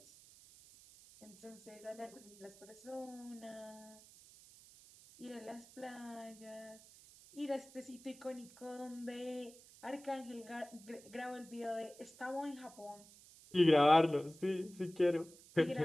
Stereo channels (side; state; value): right; noise; hiss, 21 dB below the sound